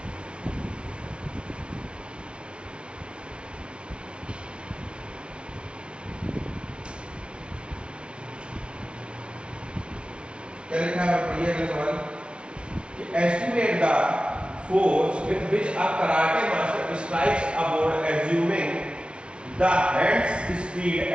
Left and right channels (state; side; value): late; left; 0.058 ms